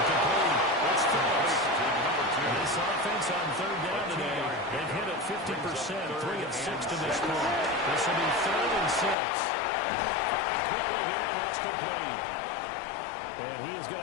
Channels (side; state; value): right; drops out; at 9.2 s